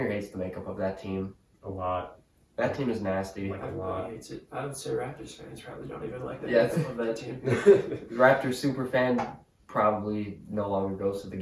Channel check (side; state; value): both; identical; correlation 1.00